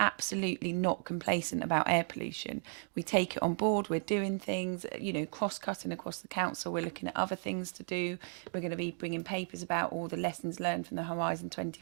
not complacent about air pollution. We take it on board. We're doing things, cross-cutting across the council. We're looking at other things to do. We're going to be bringing papers about all the lessons learned from the Horizon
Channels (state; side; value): silent; left; 55 dB below the other